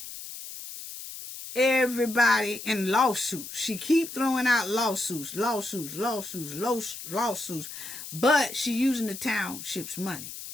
everybody in lawsuits. She keep throwing out lawsuits, but she using the township's money.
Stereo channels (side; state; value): left; noise; hiss, 11 dB below the sound